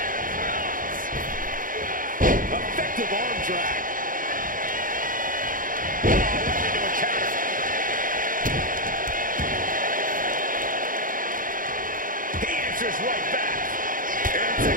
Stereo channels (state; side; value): late; left; 0.40 ms